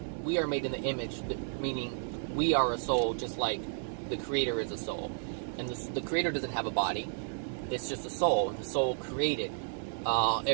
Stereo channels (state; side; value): silent; left; digital silence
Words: we are made in the image, meaning we are a soul, just like the Creator is a soul. And the Creator doesn't have a body; it's just a soul. And the soul created